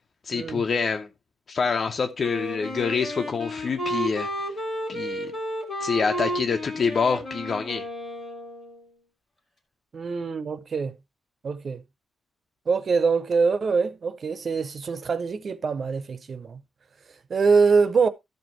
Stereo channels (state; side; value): normal; both; correlation 0.82